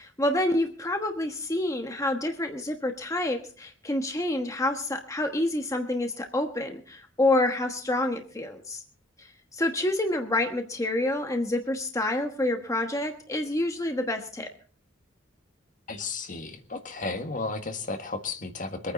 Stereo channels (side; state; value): both; normal; correlation 0.57